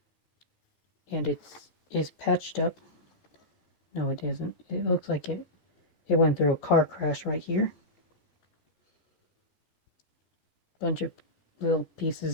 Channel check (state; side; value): late; right; 14 ms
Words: And it's patched up. No, it isn't. It looks like it went through a car crash right here. Bunch of little